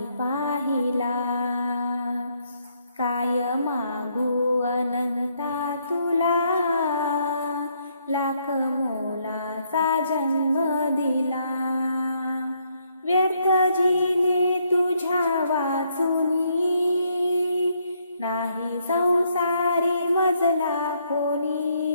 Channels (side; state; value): both; inverted; correlation -0.72